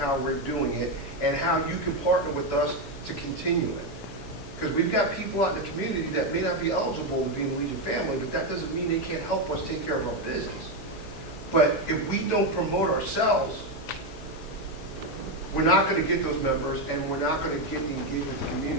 we're doing it and how you can partner with us to continue it. Because we've got people out in the community that may not be eligible to be in the Legion family, but that doesn't mean they can't help us take care of our business. But if we don't promote ourselves, we're not going to get those members, and we're not going to get the engagement with the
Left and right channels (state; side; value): noise; right; hum, 16 dB below the sound